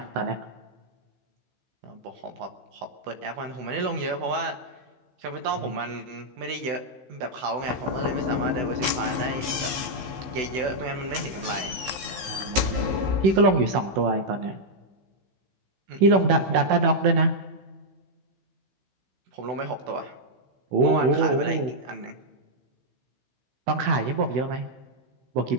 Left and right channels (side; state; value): left; late; 15 ms